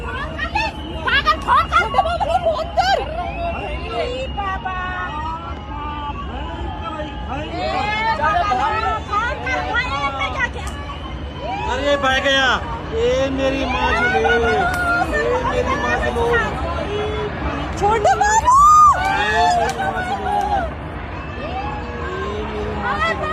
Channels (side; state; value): both; identical; correlation 1.00